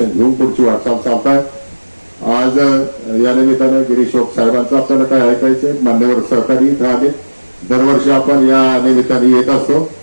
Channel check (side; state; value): both; inverted; correlation -1.00